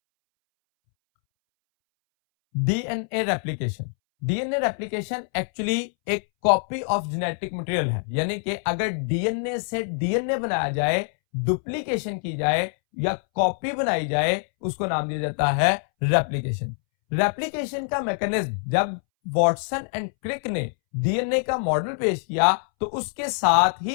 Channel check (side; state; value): right; silent; 62 dB below the other